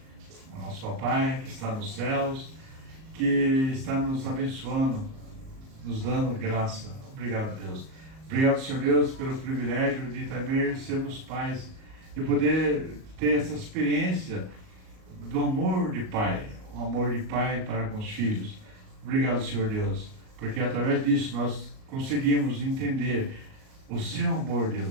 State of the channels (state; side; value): late; left; 38 ms